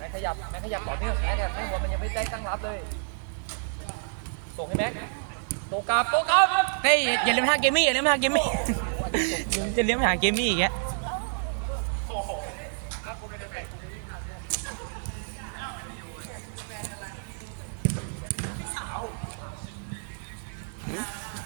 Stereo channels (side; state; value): left; silent; digital silence